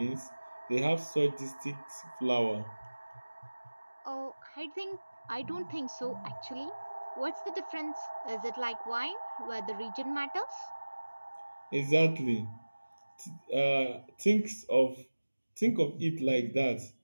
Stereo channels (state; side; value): inverted; both; correlation -1.00